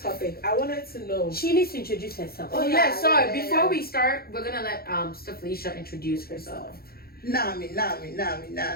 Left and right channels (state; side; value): late; right; 0.44 ms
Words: topic, I wanted to know. She needs to introduce herself. Oh, Yeah, sorry. yeah. Before we start, we're gonna let Sister Felicia introduce herself. Nami.